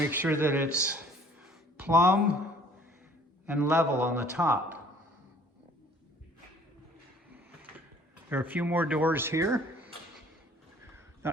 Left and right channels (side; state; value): both; normal; correlation 0.55